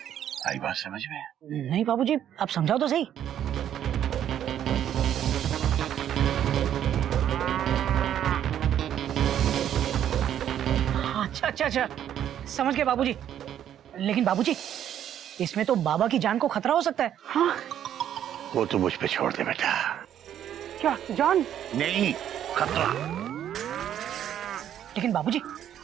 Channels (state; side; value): quieter; left; 10.4 dB